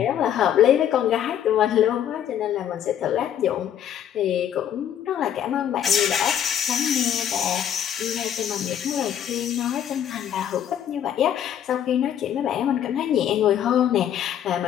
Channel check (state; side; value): quieter; right; 9.9 dB